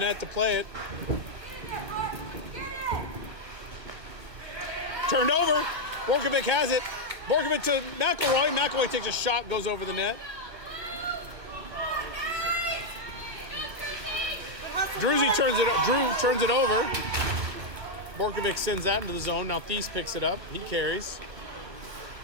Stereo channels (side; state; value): left; late; 1.5 ms